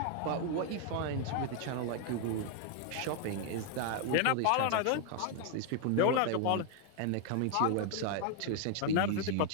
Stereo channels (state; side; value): different; both; correlation 0.00